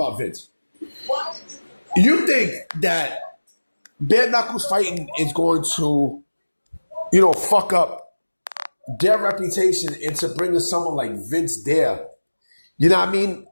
Vince. You think that bare knuckles fighting is going to, fuck up their reputation into bringing someone like Vince there? You know what I mean?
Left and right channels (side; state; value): both; inverted; correlation -1.00